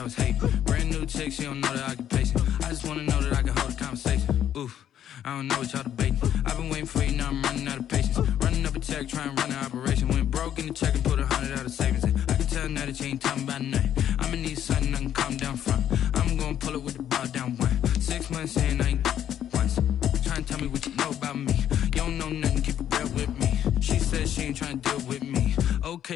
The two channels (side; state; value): right; quieter; 10.4 dB